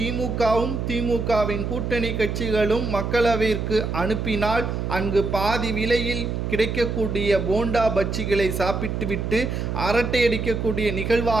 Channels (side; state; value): right; noise; hum, 3 dB below the sound